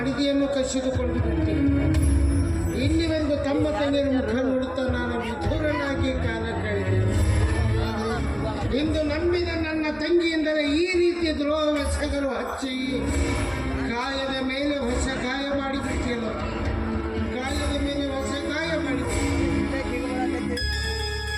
ಕಸಿದುಕೊಂಡು ಬಿಡ್ತೀನಿ. ಇಲ್ಲಿವರೆಗೂ ತಮ್ಮ ತಂಗಿಯ ಮುಖ ನೋಡುತ್ತಾ ನಾನು ವಿಧುರನಾಗಿ ಕಾಲ ಕಳೆದೆ. ಇಂದು ನಂಬಿದ ನನ್ನ ತಂಗಿಯಿಂದಲೇ ಈ ರೀತಿ ದ್ರೋಹವೆಸಗಲು ಹಚ್ಚಿ ಗಾಯದ ಮೇಲೆ ಹೊಸ ಗಾಯ ಮಾಡಿಬಿಟ್ಟಿಲ್ಲ. ಗಾಯದ ಮೇಲೆ ಹೊಸ ಗಾಯ ಮಾಡಿಬಿಟ್ಟು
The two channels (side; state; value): both; identical; correlation 1.00